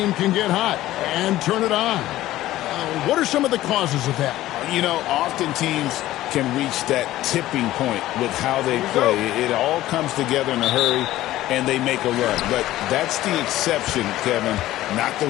can get hot and turn it on. What are some of the causes of that? You know, often teams can reach that tipping point with how they play. It all comes together in a hurry, and they make a run. But that's the exception, Kevin, not the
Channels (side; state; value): right; quieter; 15.2 dB